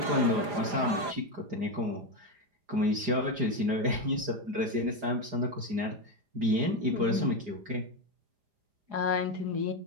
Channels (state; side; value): late; left; 4.9 ms